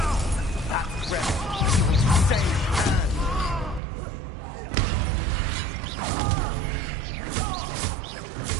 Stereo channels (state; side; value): drops out; left; at 3.8 s